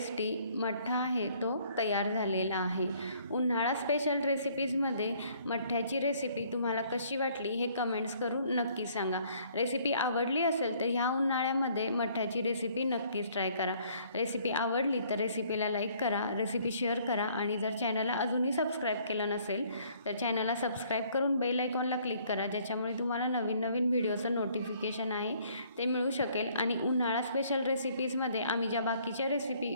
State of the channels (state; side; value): inverted; both; correlation -0.61